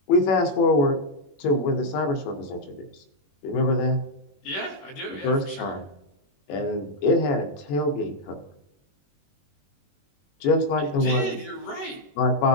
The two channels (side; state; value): right; late; 21 ms